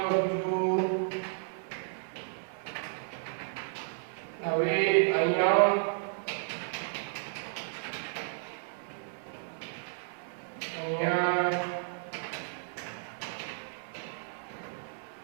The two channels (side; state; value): left; silent; 56 dB below the other